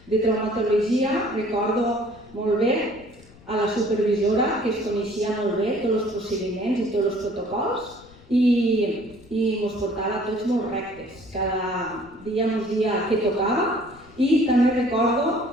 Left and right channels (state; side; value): noise; left; rumble, 24 dB below the sound